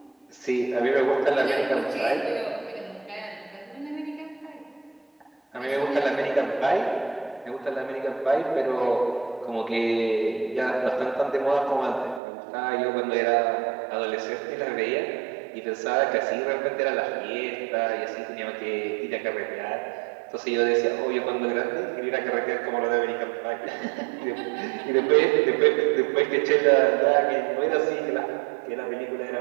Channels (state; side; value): drops out; left; at 12.2 s